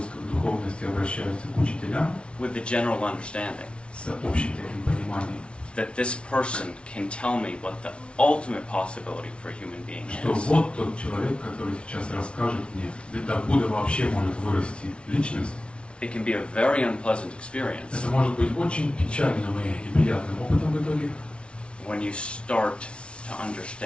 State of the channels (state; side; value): late; right; 0.059 ms